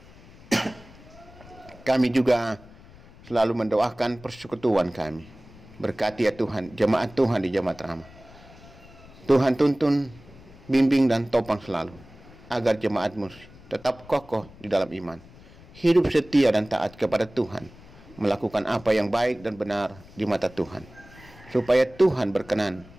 kami juga selalu mendoakan persekutuan kami. Berkati ya Tuhan, jemaat Tuhan di Jemaat Rama. Tuhan tuntun, bimbing dan topang selalu, agar jemaat-Mu tetap kokoh di dalam iman, hidup setia dan taat kepada Tuhan, melakukan apa yang baik dan benar di mata Tuhan, supaya Tuhan berkenan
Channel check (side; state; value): left; noise; rumble, 22 dB below the sound